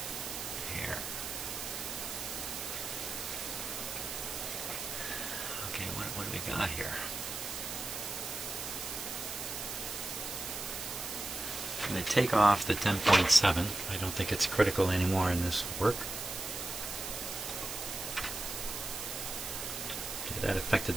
here. Okay, what do we got here? I'm going to take off the 10.7. I don't think it's critical anymore in this work. Okay, that affected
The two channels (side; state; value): right; noise; hiss, 6 dB below the sound